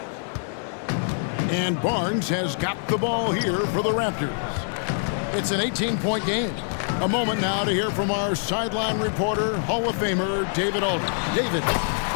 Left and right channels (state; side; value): silent; right; digital silence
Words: And Barnes has got the ball here for the Raptors. It's an 18-point game. A moment now to hear from our sideline reporter, Hall of Famer David Aldridge. David.